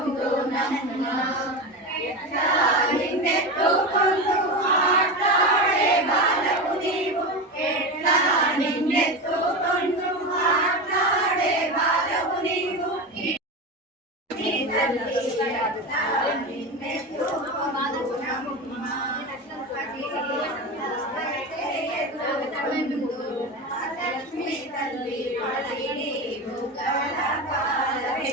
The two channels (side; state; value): both; normal; correlation 0.21